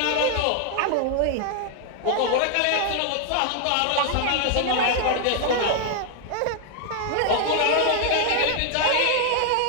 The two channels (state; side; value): different; both; correlation 0.00